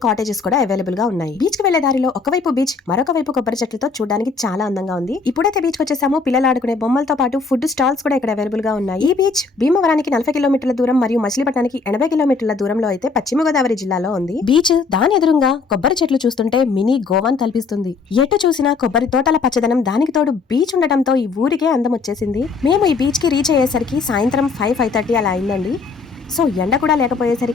కాటేజెస్ కూడా అవైలబుల్ గా ఉన్నాయి. బీచ్ కి వెళ్లే దారిలో ఒకవైపు బీచ్, మరొక వైపు కొబ్బరి చెట్లతో చూడడానికి చాలా అందంగా ఉంది. ఇప్పుడైతే బీచ్ కి వచ్చేసాము. పిల్లలు ఆడుకునే బొమ్మలతో పాటు ఫుడ్ స్టాల్స్ కూడా ఇక్కడ అవైలబుల్ గా ఉన్నాయి. ఈ బీచ్ భీమవరానికి 40 కిలోమీటర్ల దూరం మరియు మచిలీపట్నానికి 80 కిలోమీటర్ల దూరంలో అయితే పశ్చిమ గోదావరి జిల్లాలో ఉంది. బీచ్ దాని ఎదురుగా కొబ్బరి చెట్లు చూస్తుంటే మినీ గోవాన్ తలపిస్తుంది. ఎటు చూసినా కొబ్బరి తోటల పచ్చదనం, దానికి తోడు బీచ్ ఉండటంతో ఈ ఊరికే అందం వచ్చేసింది. మేము ఈ బీచ్ కి రీచ్ అయ్యేసరికి సాయంత్రం 5:30 అలా అయిందండి. సో ఎండ కూడా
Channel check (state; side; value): quieter; right; 4.6 dB